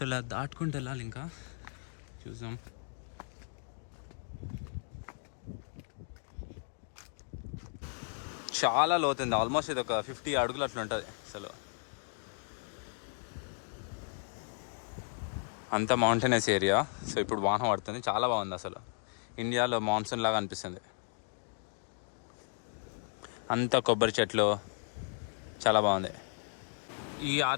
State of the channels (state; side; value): silent; right; 55 dB below the other